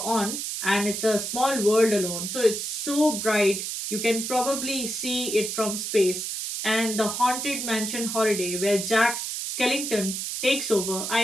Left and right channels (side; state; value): right; noise; hiss, 4 dB below the sound